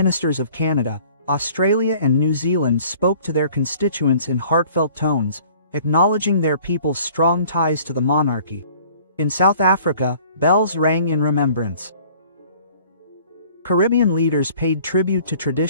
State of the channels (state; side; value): inverted; both; correlation -0.53